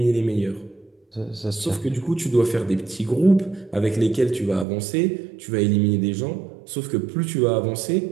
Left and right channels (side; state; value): left; drops out; at 4.7 s